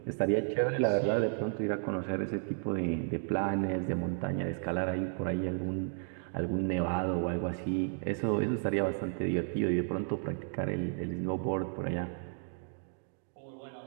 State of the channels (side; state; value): left; silent; 56 dB below the other